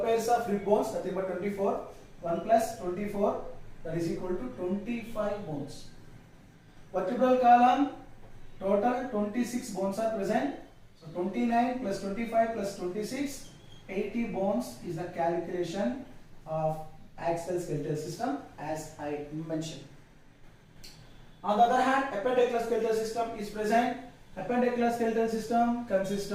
pairs of rib bones, nothing but 24. 1 plus 24, that is equal to 25 bones. Vertebral column, total 26 bones are present. So 29 plus 25 plus 26, 80 bones is the calculation of axial skeletal system as I mentioned. On the other hand, appendicular skeletal system is present. Appendicular skeletal system consists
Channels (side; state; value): both; identical; correlation 1.00